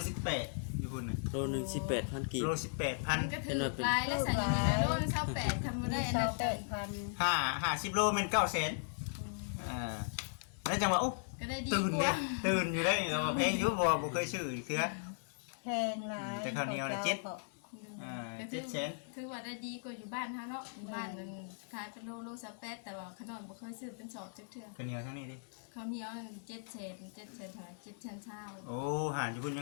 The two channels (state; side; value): silent; right; 53 dB below the other